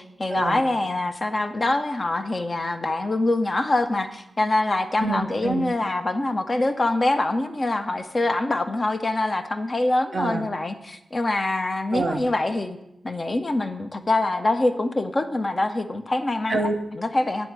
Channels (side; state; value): both; normal; correlation 0.94